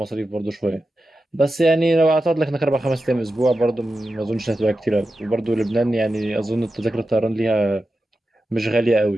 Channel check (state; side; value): normal; both; correlation 0.91